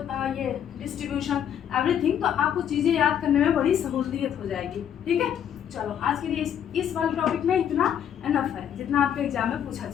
डिस्ट्रीब्यूशन, एवरीथिंग। तो आपको चीज़ें याद करने में बड़ी सहूलियत हो जाएगी। ठीक है, चलो आज के लिए इस वाले टॉपिक में इतना एनफ है जितना आपके एग्जाम में पूछा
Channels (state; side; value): quieter; right; 9.3 dB